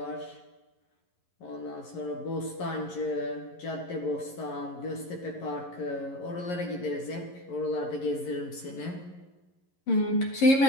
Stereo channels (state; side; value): late; right; 11 ms